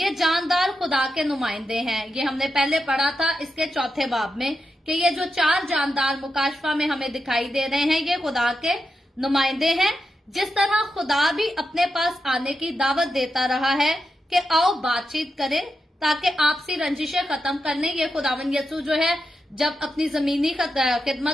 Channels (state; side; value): normal; both; correlation 0.87